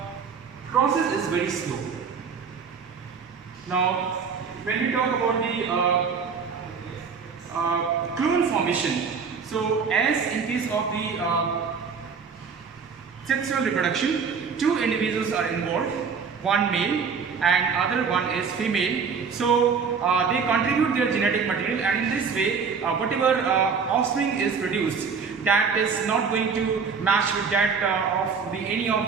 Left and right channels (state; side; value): quieter; left; 5.8 dB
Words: process is very slow. Now when we talk about the clone formation, so as in case of the sexual reproduction, two individuals are involved, one male and other one is female. So they contribute their genetic material, and in this way whatever offspring is produced, that is not going to match with that of the any of